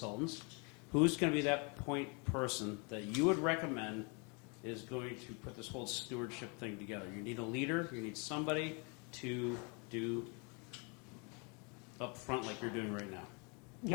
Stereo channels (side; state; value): right; quieter; 33.3 dB